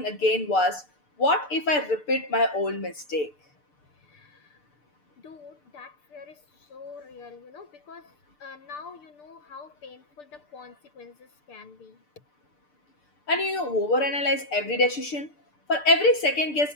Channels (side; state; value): right; late; 6.8 ms